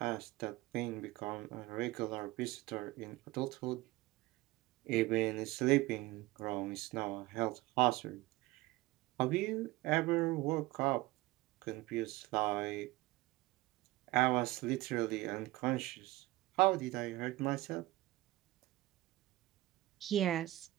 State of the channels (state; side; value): quieter; left; 18.9 dB